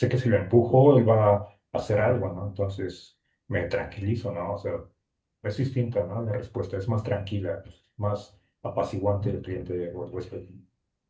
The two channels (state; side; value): identical; both; correlation 1.00